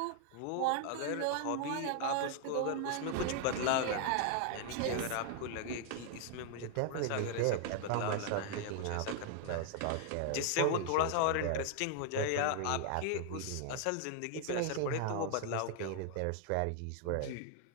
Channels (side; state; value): both; different; correlation 0.00